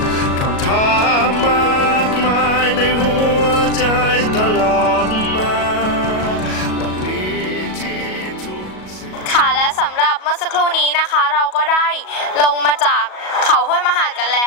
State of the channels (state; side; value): late; right; 37 ms